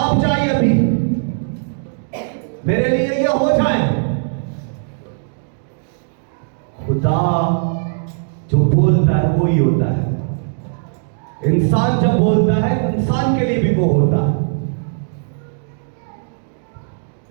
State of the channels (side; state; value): left; silent; digital silence